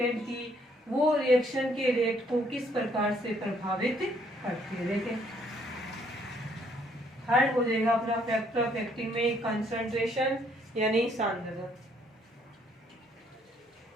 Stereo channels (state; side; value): normal; both; correlation 0.67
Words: की वो रिएक्शन के रेट को किस प्रकार से प्रभावित करती है। देखें थर्ड हो जाएगा अपना फैक्टर अफेक्टिंग में कंसंट्रेशन यानी सांद्रता।